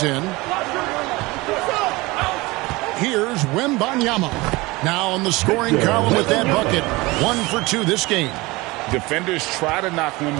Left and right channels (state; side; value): quieter; left; 22.3 dB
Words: in. Here's Wembanyama. Now on the scoring column with that bucket. 1 for 2 this game. Defenders try to knock